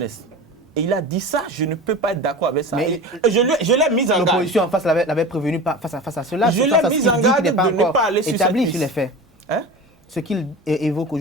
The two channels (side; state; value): both; normal; correlation 0.32